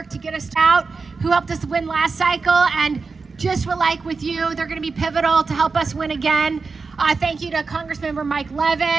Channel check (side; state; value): left; quieter; 4.5 dB